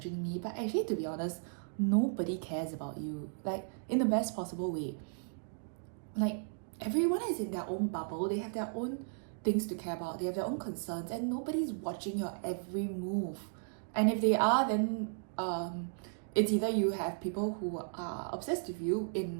me. But actually, to be honest, nobody cares about you, like in the best possible way. Like, everyone is in their own bubble, they have their own things to care about, they have their own concerns, and nobody's watching your every move. And if they are, then it's either you have people who are obsessed with you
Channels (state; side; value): silent; left; digital silence